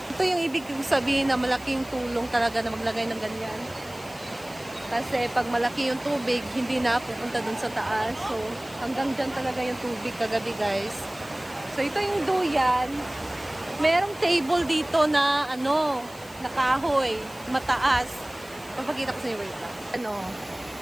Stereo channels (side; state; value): left; noise; hiss, 21 dB below the sound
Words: Ito yung ibig sabihin na malaking tulong talaga na maglagay ng ganyan. Kasi pag malaki yung tubig, hindi na pupunta dun sa taas. So, hanggang dyan talaga yung tubig kagabi, guys. So, ito yung duyan. Merong table dito na, na kahoy. Mataas. Papakita ko sa inyo, wait lang.